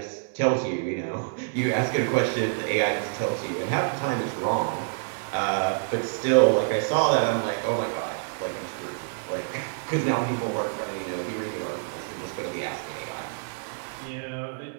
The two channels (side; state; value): left; silent; digital silence